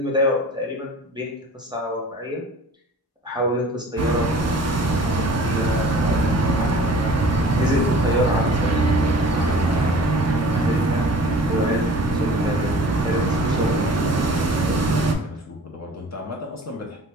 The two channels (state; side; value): normal; both; correlation 0.45